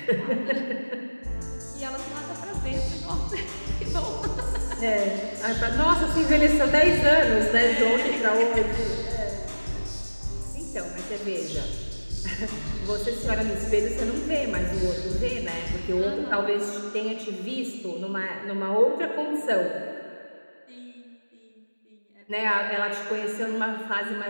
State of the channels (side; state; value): both; inverted; correlation -1.00